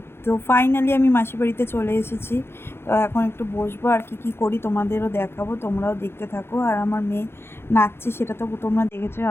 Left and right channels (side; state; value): right; late; 0.12 ms